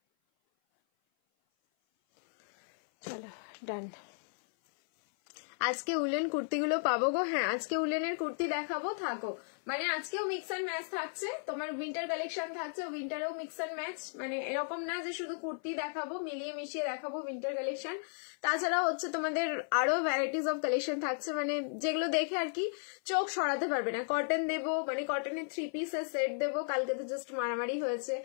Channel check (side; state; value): right; silent; 55 dB below the other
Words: চলো ডান। আজকে উলেন কুর্তিগুলো পাবো গো? হ্যাঁ, আজকে উলেনের কুর্তি দেখাবো, থাকো। মানে আজকেও মিক্স অ্যান্ড ম্যাচ থাকছে, তোমার উইন্টার কালেকশন থাকছে, উইন্টারেও মিক্স অ্যান্ড ম্যাচ। মানে এরকম না যে শুধু কুর্তি দেখাবো, মিলিয়ে মিশিয়ে দেখাবো উইন্টার কালেকশন। তাছাড়াও হচ্ছে তোমাদের আরো ভ্যারাইটিস অফ কালেকশন থাকছে, মানে যেগুলো দেখে আর কি চোখ সরাতে পারবে না। কটন দেবো, মানে কটনের 3 পিসের সেট দেবো। কালকে তো জাস্ট মারামারি হয়েছে